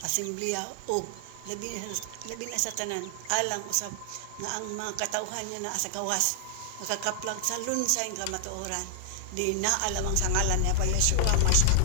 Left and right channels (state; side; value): different; both; correlation 0.00